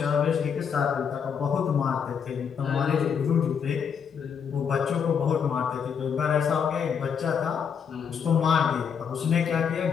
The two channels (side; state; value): right; quieter; 7.1 dB